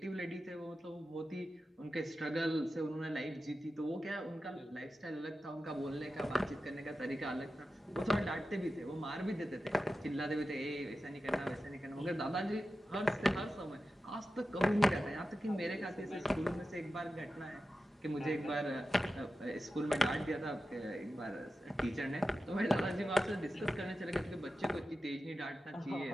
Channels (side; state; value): both; normal; correlation 0.92